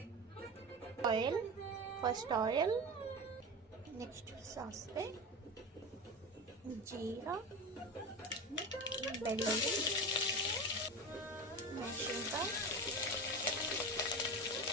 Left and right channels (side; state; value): both; normal; correlation 0.25